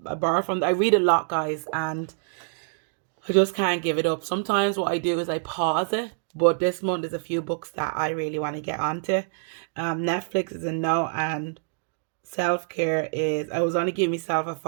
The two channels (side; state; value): left; silent; digital silence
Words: borrow from, I read a lot, guys, and I just can't give it up. Sometimes what I do is I pause it, but this month there's a few books that I really want to get onto. Netflix is a no, and self-care is, I was only giving myself a